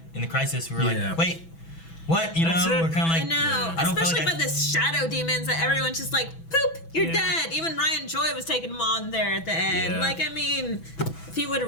in the Crisis. We were like, wait, what? You That's know, it. we're kind of like, I know. I don't Especially feel like by the shadow demons that everyone's just like, poop, you're Yeah. dead. Even Ryan Joy was taking him on there at the end. Yeah. Like, I mean, if he would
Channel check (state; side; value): late; right; 6.1 ms